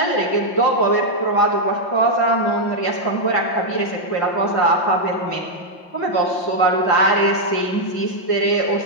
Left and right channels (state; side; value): late; right; 5.7 ms